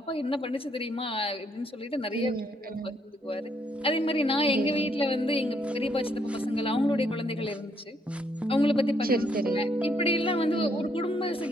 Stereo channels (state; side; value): normal; both; correlation 0.72